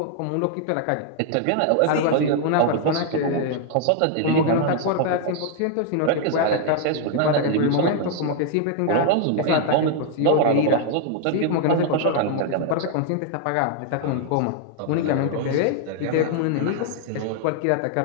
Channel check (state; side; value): different; both; correlation 0.00